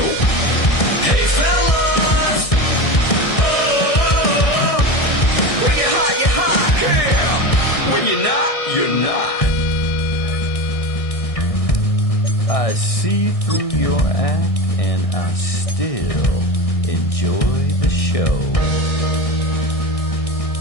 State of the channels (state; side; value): late; right; 1.6 ms